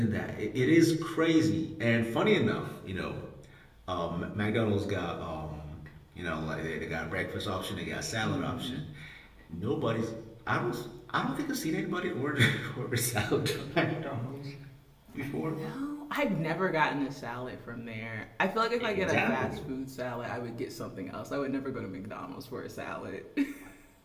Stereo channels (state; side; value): identical; both; correlation 1.00